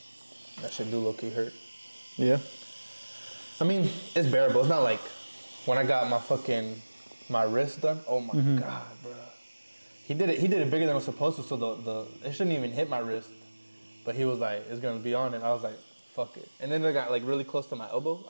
That shit do low-key hurt. Yeah. I mean, it's bearable. It's not like when I got my wrist done. Oh my God, bro. He did it bigger than it was supposed to, so it shouldn't even hit my wrist. But he was like, it's gonna be on it. I was like, fuck it. And then it got like really close to my elbow.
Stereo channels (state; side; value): inverted; both; correlation -1.00